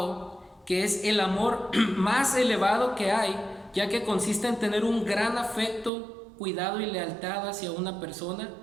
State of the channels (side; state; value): left; drops out; at 5.9 s